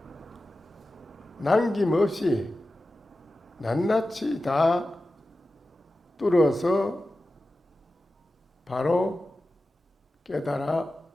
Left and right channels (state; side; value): normal; both; correlation 0.94